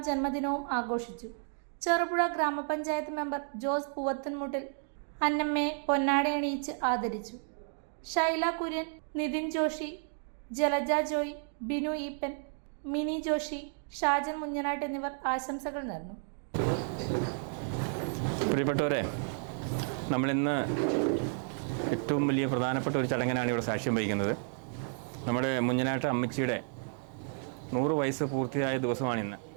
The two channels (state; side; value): silent; left; 56 dB below the other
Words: ജന്മദിനവും ആഘോഷിച്ചു. ചെറുപുഴ ഗ്രാമപഞ്ചായത്ത് മെമ്പർ ജോസ് പൂവത്തൻമുട്ടിൽ അന്നമ്മയെ പൊന്നാടയണിയിച്ച് ആദരിച്ചു. ഷൈല കുര്യൻ, നിതിൻ ജോഷി, ജലജ ജോയ്, ബിനു ഈപ്പൻ, മിനി ജോഷി, ഷാജൻ മുഞ്ഞനാട്ട് എന്നിവർ ആശംസകൾ നേർന്നു. പ്രിയപ്പെട്ടവരെ, നമ്മളിന്ന് ഏറ്റവും വലിയ പ്രധാനപ്പെട്ട ഒരു ചടങ്ങിനാണ് ഇവിടെ സാക്ഷ്യം വഹിക്കുന്നത്. നമ്മുടെ മുഞ്ഞനാട്ട് അമ്മച്ചിയുടെ 100 വയസ്സ് പൂർത്തിയായ ദിവസമാണിന്ന്.